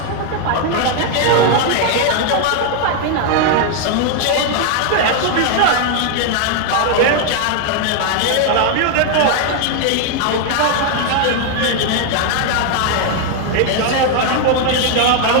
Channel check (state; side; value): different; both; correlation 0.00